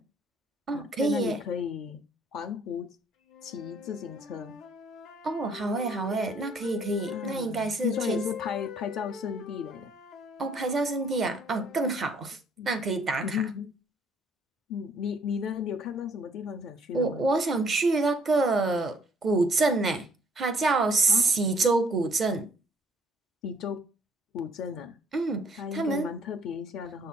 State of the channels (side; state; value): both; normal; correlation 0.62